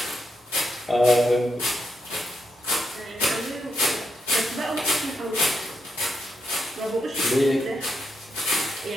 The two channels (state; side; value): normal; both; correlation 0.82